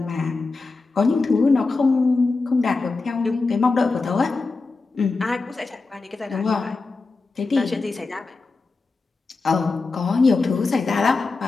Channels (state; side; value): quieter; right; 3.9 dB